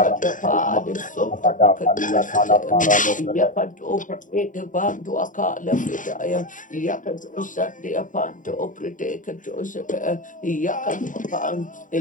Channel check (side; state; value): right; late; 0.38 ms